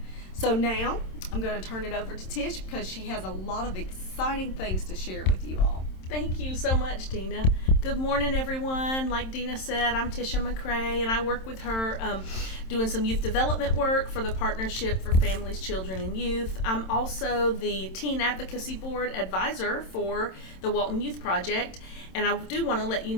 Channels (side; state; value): right; late; 27 ms